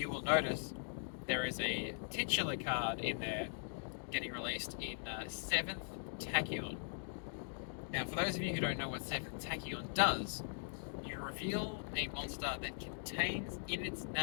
will notice there is a titular card in there getting released in 7th Tachyon. Now, for those of you who don't know what 7th Tachyon does, you reveal a monster that contains in its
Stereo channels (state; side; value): silent; right; digital silence